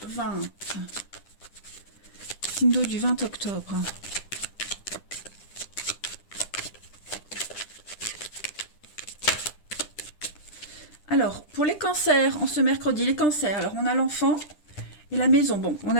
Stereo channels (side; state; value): right; late; 10 ms